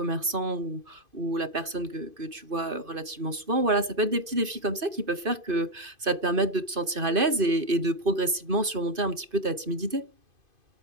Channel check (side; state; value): left; late; 2.5 ms